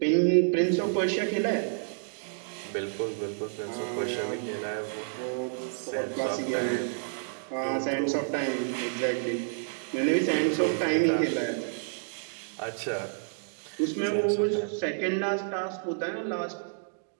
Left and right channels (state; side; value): silent; left; digital silence